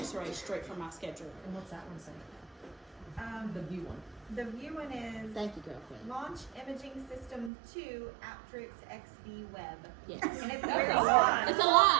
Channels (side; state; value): left; drops out; at 7.5 s